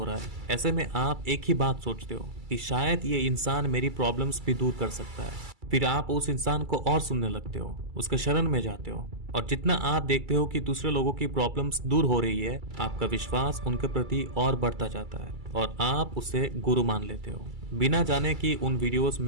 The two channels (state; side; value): late; left; 2.3 ms